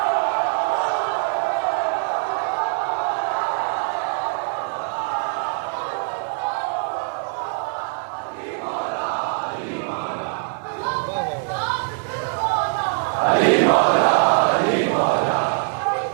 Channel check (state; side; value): silent; left; 64 dB below the other